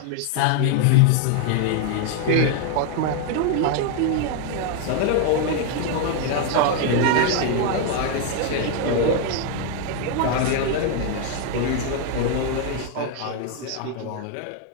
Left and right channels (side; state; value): both; different; correlation 0.01